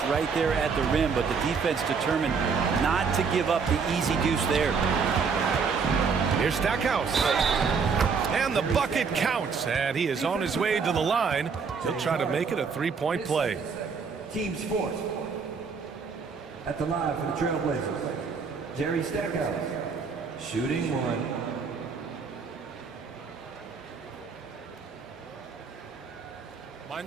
right there at the rim, but the defense determined not to give up the easy deuce there. Here's Stackhouse. And the bucket counts. And he is on his way to the line. He'll try to make it a 3-point play. Team Sports. At the line for the Trailblazers, Jerry Stackhouse. Shooting 1.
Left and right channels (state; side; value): quieter; left; 5.5 dB